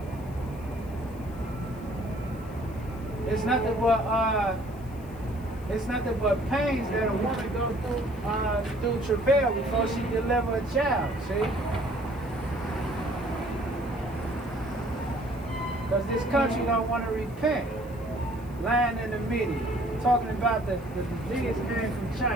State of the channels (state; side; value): noise; left; hiss, 25 dB below the sound